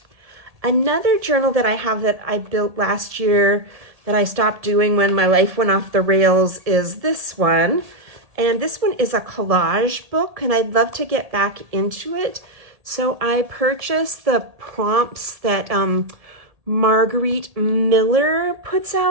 Another journal that I have that I built last year that I stopped doing when my life went off the rails is this one. And this one is a collage book, and I'd love to get back into it. So I purchased the prompts that Marguerite Miller puts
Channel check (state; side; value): late; left; 1.7 ms